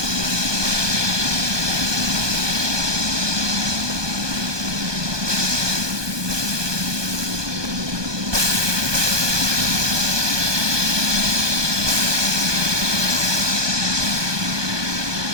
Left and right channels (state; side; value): late; left; 1.2 ms